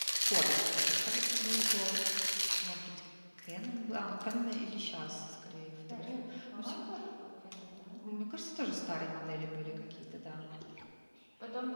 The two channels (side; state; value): both; inverted; correlation -1.00